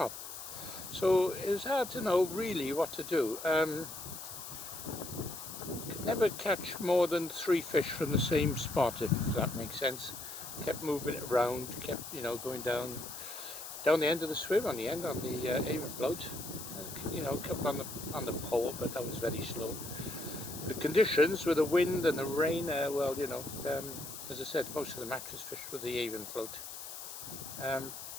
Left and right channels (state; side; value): noise; left; hiss, 10 dB below the sound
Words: So it was hard to know really what to do. Could never catch more than 3 fish from the same spot, if that makes sense. Kept moving it around, kept, you know, going down the end of the swim, on the Avon float. You know, kept on the pole, but that was very slow. The conditions with the wind and the rain, well, you know, as I said, most of the match was fished with the Avon float.